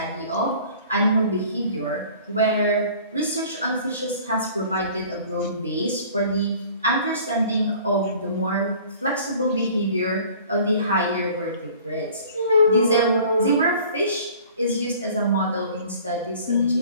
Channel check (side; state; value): both; inverted; correlation -0.48